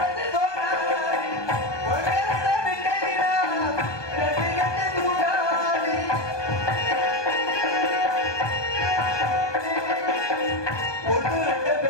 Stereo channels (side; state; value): right; late; 1.2 ms